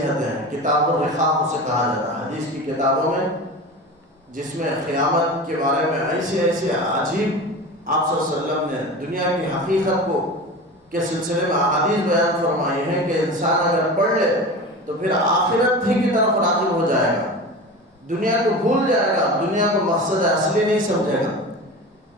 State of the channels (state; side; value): normal; both; correlation 0.31